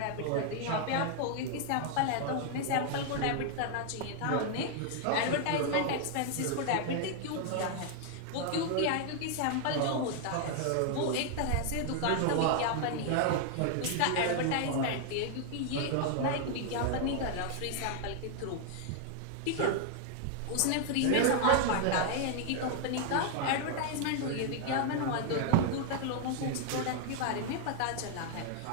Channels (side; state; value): both; different; correlation 0.00